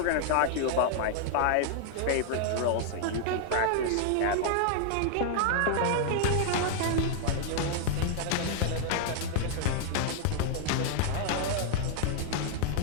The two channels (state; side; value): different; both; correlation 0.00